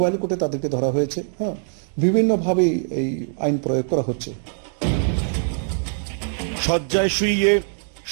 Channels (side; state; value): left; silent; 64 dB below the other